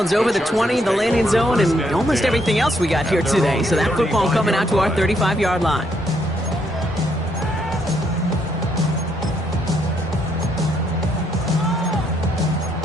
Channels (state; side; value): normal; both; correlation 0.74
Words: over the 20, the landing zone, and almost everything else we got here today. So that football coming out to our 35-yard line.